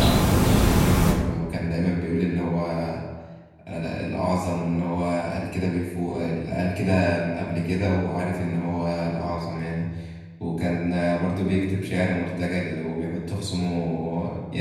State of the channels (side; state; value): both; identical; correlation 1.00